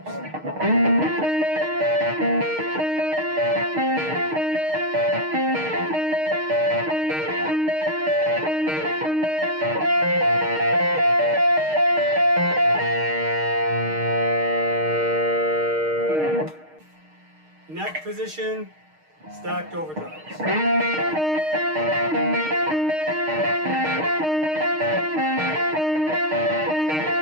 Neck position, stacked overdrives.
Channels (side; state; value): left; late; 6.5 ms